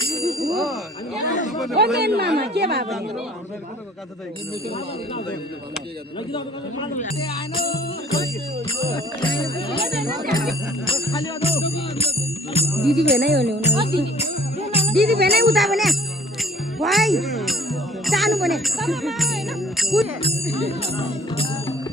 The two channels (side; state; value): both; normal; correlation 0.53